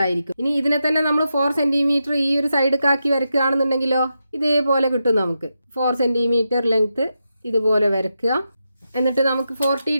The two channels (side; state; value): both; inverted; correlation -0.87